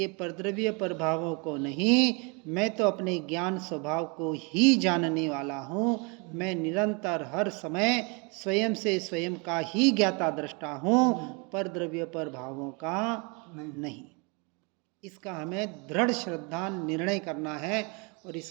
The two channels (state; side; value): quieter; left; 31.7 dB